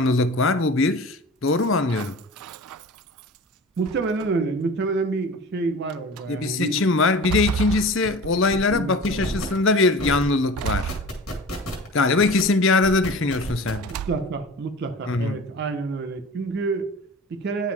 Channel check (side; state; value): both; normal; correlation 0.37